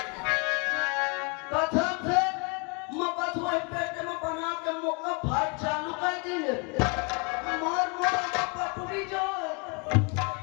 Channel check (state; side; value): quieter; right; 33.0 dB